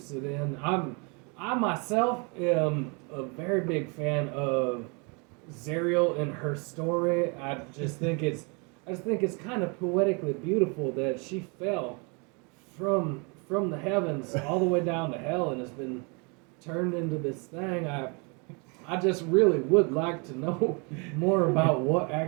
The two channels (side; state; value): left; quieter; 32.6 dB